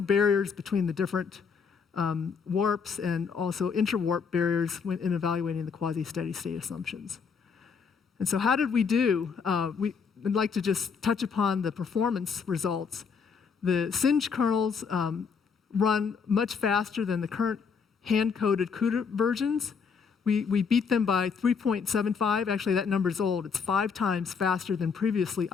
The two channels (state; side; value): quieter; right; 5.9 dB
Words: barriers between the different warps and also inter-warp barriers in evaluating the quasi-steady state assumptions. And so how did we do? We'd like to just touch upon the performance results. The SING kernels run much faster than the current hand-coded CUDA versions. We beat them by 3.75. Actually, that number's old. It's 5 times faster than previously